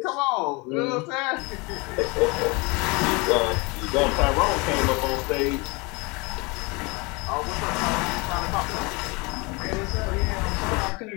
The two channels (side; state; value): right; quieter; 27.4 dB